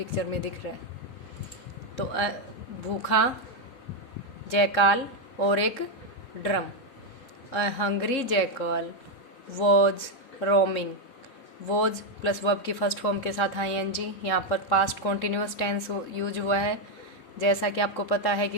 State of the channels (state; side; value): late; right; 3.7 ms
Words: में दिख रहा है। तो भूखा, जैकाल और एक drum. A Hungary jackal was roaming. Was plus verb की फर्स्ट फॉर्म के साथ आईएनजी, यहाँ पर पास्ट कॉन्टिन्यूस टेंस यूज हुआ है। जैसा कि आपको पता है कि